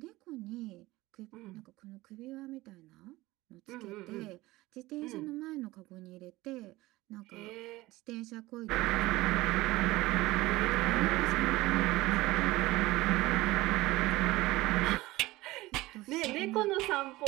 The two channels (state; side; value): quieter; left; 19.1 dB